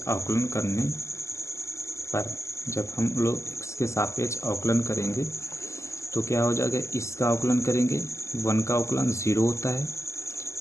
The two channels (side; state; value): right; late; 0.14 ms